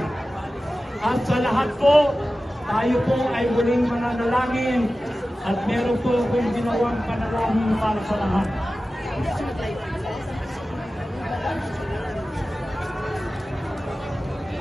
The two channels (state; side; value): normal; both; correlation 0.95